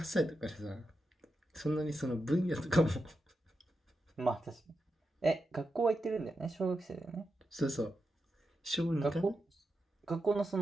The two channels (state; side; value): normal; both; correlation 0.88